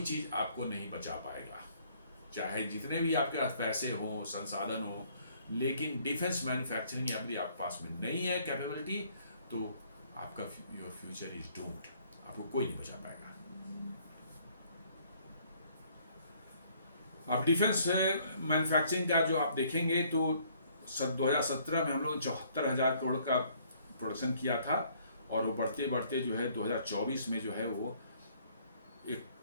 आपको नहीं बचा पाएगा, चाहे जितने भी आपके पास पैसे हो, संसाधन हो, लेकिन डिफेंस मैन्युफैक्चरिंग यदि आपके पास में नहीं है कैपेबिलिटी, तो आपका योर फ्यूचर इज डूम्ड, आपको कोई नहीं बचा पाएगा। अब डिफेंस मैन्युफैक्चरिंग का जो आप देखेंगे तो 2017 में हम लोग 74,000 करोड़ का प्रोडक्शन किया था, और वो बढ़ते बढ़ते जो है 2024 में जो है वो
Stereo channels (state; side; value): inverted; both; correlation -0.62